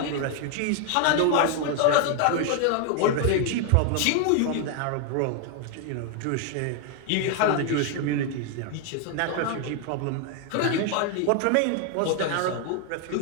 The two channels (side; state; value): both; different; correlation 0.00